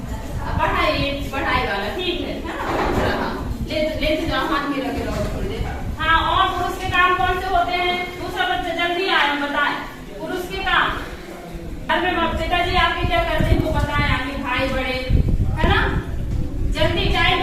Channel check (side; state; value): both; identical; correlation 1.00